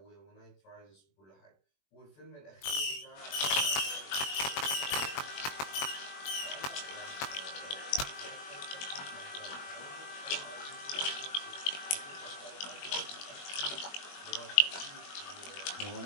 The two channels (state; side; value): late; right; 21 ms